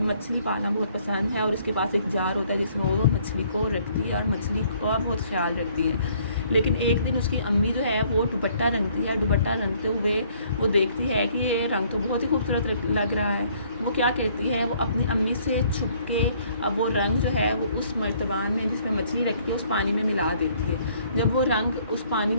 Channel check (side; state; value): both; inverted; correlation -0.62